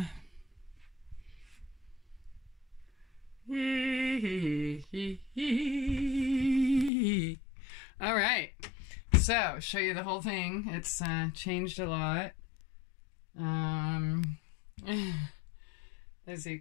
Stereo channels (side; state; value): right; drops out; at 6.9 s